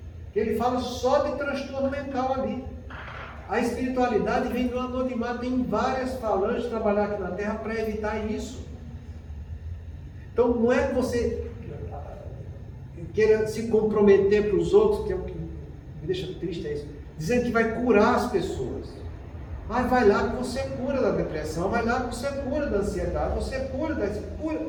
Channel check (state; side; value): identical; both; correlation 1.00